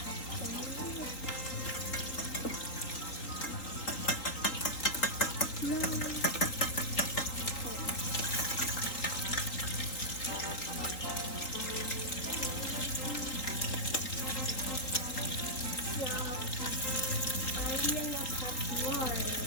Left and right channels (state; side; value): late; right; 3.8 ms